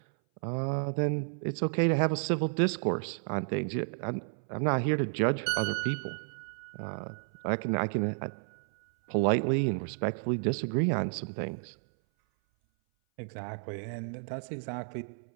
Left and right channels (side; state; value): left; silent; 57 dB below the other